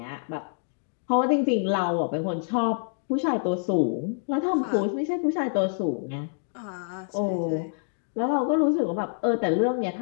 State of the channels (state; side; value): silent; right; digital silence